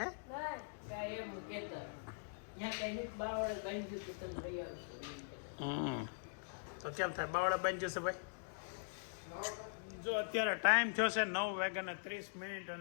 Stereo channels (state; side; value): silent; right; digital silence